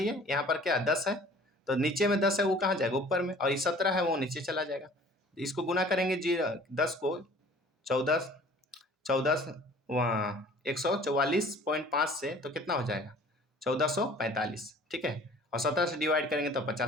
यहाँ पर क्या 10 है, तो नीचे में 10 है वो कहाँ जाएगा? ऊपर में, और ये 17 है वो नीचे चला जाएगा। इसको गुना करेंगे 10 को 14 वहाँ 144.5 से, तो कितना हो जाएगा? 1445। ठीक है, और 17 से डिवाइड करेंगे तो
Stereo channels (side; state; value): both; normal; correlation 0.50